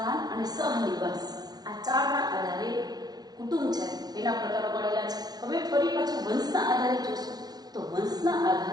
અને સહનિવાસ, આ ચારના આધારે કુટુંબ છે એના પ્રકારો પડેલા છે. હવે ફરી પાછું વંશના આધારે જોશું તો વંશના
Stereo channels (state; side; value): late; left; 0.19 ms